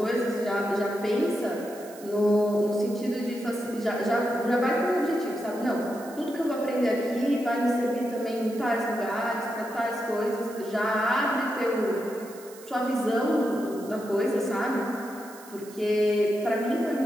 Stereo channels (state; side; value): noise; right; hiss, 20 dB below the sound